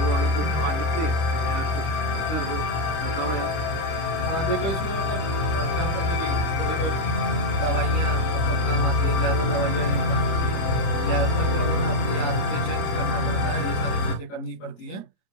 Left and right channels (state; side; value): late; right; 26 ms